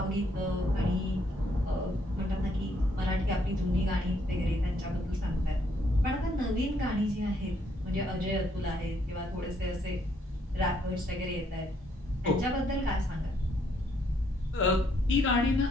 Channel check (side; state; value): both; normal; correlation 0.70